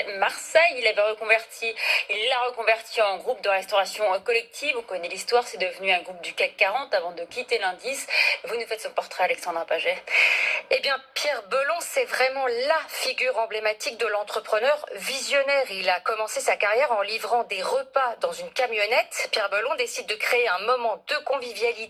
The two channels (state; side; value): identical; both; correlation 1.00